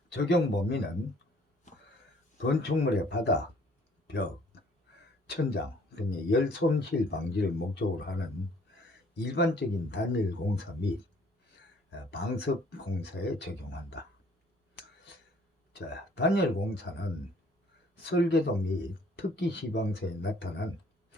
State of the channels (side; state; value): both; normal; correlation 0.59